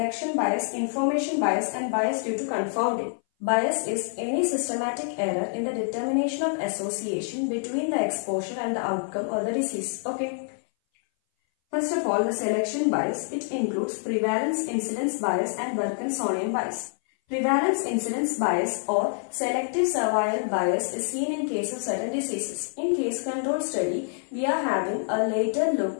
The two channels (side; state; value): right; silent; 59 dB below the other